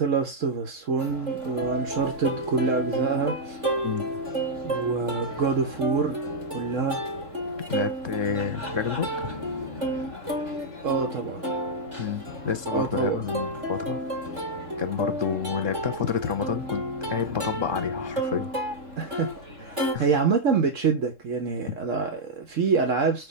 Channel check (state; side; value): late; left; 3.7 ms